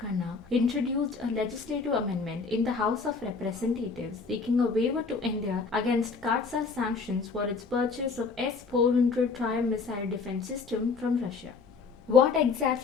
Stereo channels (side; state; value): right; quieter; 4.6 dB